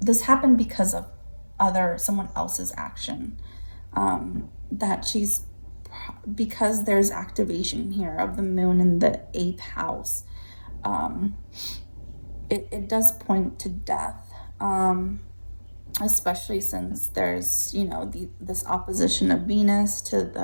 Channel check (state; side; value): inverted; both; correlation -1.00